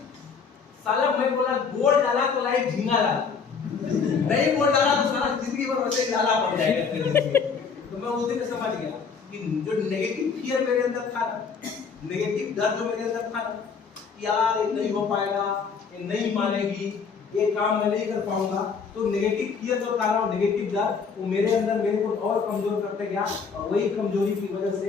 साला मैं बोला बोल डाला तो लाइफ झींगा डाला, नहीं बोल डाला तो सारा जिंदगी भर वैसे लाला पड़ जाएगा। तो मैं उस दिन समझ गया कि जो नेगेटिव फियर मेरे अंदर था, नेगेटिव डर जो मेरे अंदर था यार ये नहीं हो पाएगा, ये नहीं मानेगी, ये काम मैं नहीं कर पाऊंगा, तो नेगेटिव फियर जो था ना, नेगेटिव डर वो मेरे अंदर मेरे को और कमजोर करते गया। और वही कमजोरी की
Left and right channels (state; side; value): quieter; right; 5.7 dB